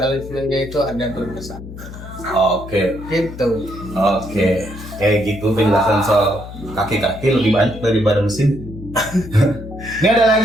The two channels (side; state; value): left; noise; hum, 13 dB below the sound